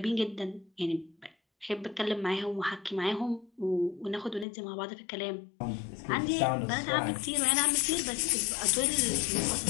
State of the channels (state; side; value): drops out; right; at 4.5 s